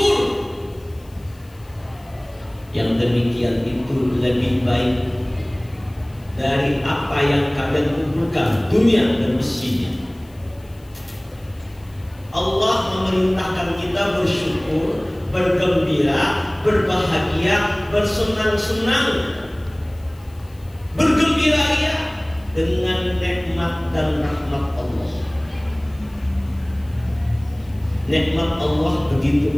Yang demikian itu lebih baik dari apa yang kalian kumpulkan dunia dan isinya. Allah memerintahkan kita bersyukur, bergembira, berbahagia, bersenang-senang, bergembira ya dengan nikmat dan rahmat Allah. Nikmat Allah begitu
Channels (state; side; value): noise; left; hiss, 29 dB below the sound